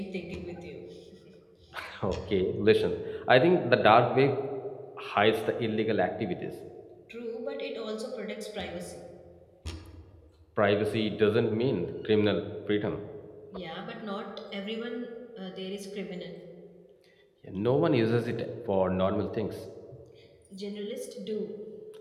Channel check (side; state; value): both; identical; correlation 1.00